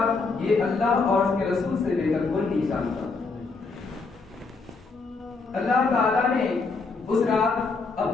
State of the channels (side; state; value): right; quieter; 4.2 dB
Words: یہ اللہ اور اس کے رسول سے بے کر کوئی نہیں جانتا۔ اللہ تعالیٰ نے اس رات